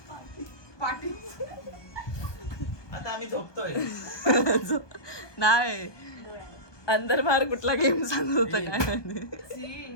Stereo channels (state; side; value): late; right; 1.2 ms